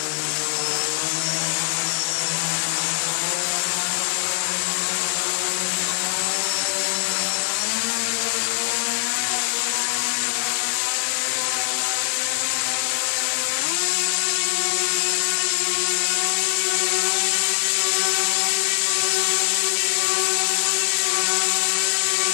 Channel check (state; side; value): silent; right; digital silence